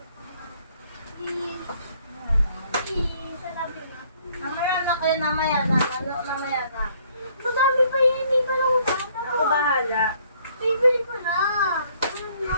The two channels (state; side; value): inverted; both; correlation -0.63